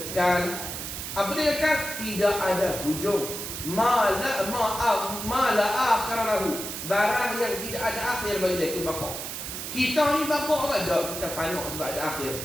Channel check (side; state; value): right; noise; hiss, 6 dB below the sound